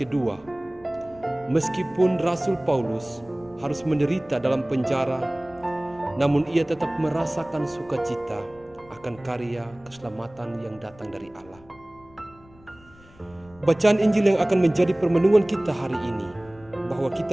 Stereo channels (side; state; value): left; noise; rumble, 25 dB below the sound